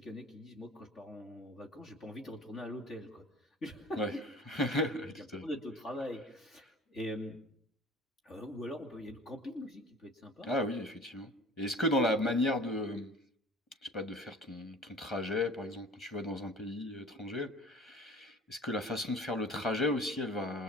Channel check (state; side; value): normal; both; correlation 0.44